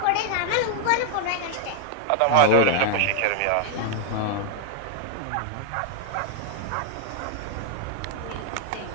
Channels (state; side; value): different; both; correlation 0.00